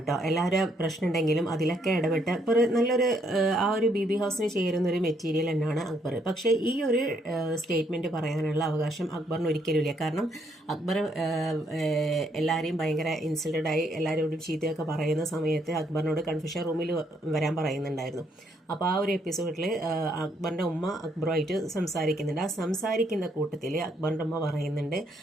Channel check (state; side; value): normal; both; correlation 0.72